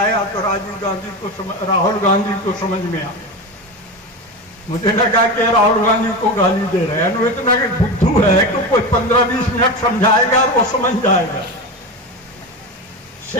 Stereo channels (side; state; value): both; normal; correlation 0.22